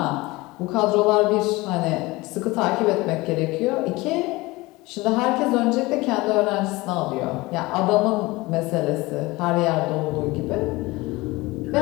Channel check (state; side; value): quieter; right; 21.5 dB